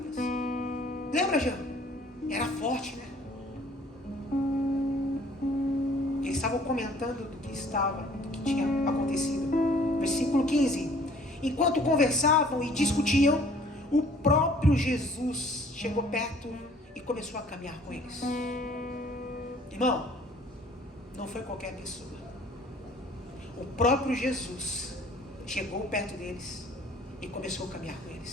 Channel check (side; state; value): both; normal; correlation 0.55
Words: Lembra, Jean? Era forte, né? Eles estavam comentando do que tinha acontecido. Versículo 15. Enquanto conversavam e discutiam, o próprio Jesus chegou perto e começou a caminhar com eles. Irmão, não foi qualquer pessoa. O próprio Jesus chegou perto deles e começou a caminhar com